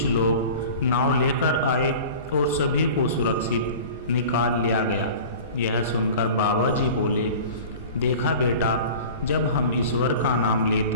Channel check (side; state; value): both; inverted; correlation -0.39